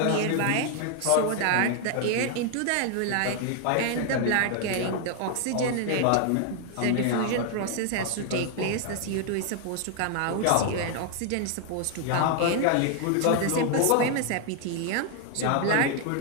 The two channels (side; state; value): both; different; correlation 0.00